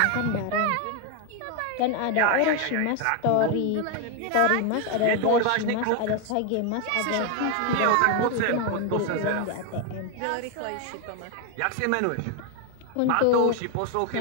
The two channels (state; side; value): different; both; correlation 0.01